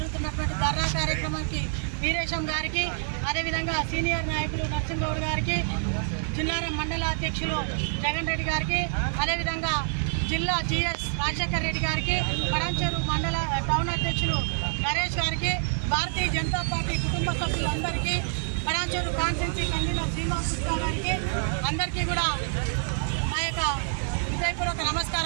ధర్నా కార్యక్రమానికి వీరేశం గారికి, అదేవిధంగా సీనియర్ నాయకులు నరసింహగౌడ్ గారికి, జిల్లారం మండల అధ్యక్షులు జగన్ రెడ్డి గారికి, అదేవిధంగా జిల్లా జిఎస్ రాజశేఖర్ రెడ్డి గారికి, పటాన్చెరు మండల టౌన్ అధ్యక్షులు నరేష్ గారికి, భారతీయ జనతా పార్టీ కుటుంబ సభ్యులందరికీ, పటాన్చెరు కాన్స్టిట్యున్సీ కన్వీనర్ శ్రీనివాస్ గుప్తా గారికి అందరికీ కూడా మా యొక్క హృదయపూర్వక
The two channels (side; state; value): left; silent; digital silence